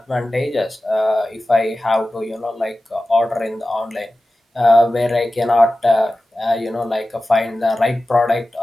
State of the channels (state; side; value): normal; both; correlation 0.95